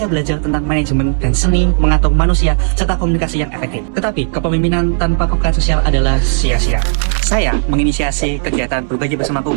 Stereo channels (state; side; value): silent; left; digital silence